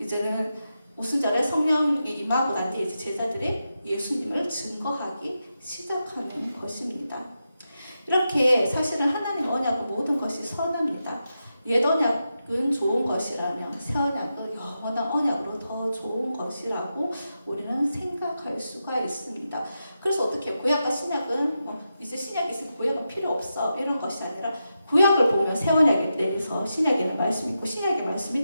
오순절에 성령이 임하고 난 뒤에 이제 제자들이 예수님을 증거하기 시작하는 것입니다. 이렇게 사실은 하나님 언약은 모든 것이 선합니다. 옛 언약은 좋은 것이라면 새 언약은 영원한 언약으로 더 좋은 것이라고 우리는 생각할 수가 있습니다. 그래서 어떻게 구약과 신약은 이제 신약이 있으면 구약은 필요 없어 이런 것이 아니라 구약을 보면 새 언약에 대해서 신약에는 말씀이 있고 신약의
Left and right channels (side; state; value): both; inverted; correlation -0.88